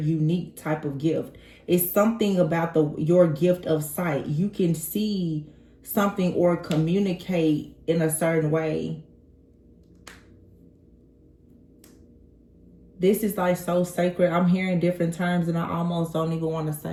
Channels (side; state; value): both; identical; correlation 1.00